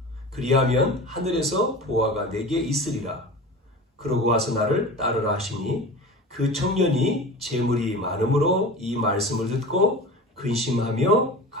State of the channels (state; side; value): normal; both; correlation 0.34